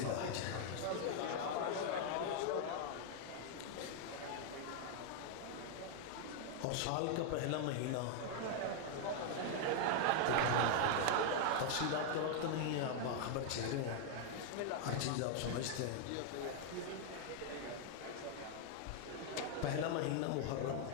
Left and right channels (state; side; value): different; both; correlation 0.00